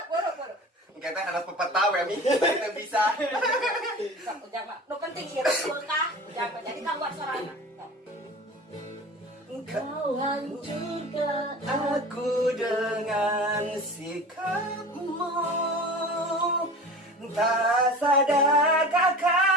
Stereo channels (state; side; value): normal; both; correlation 0.37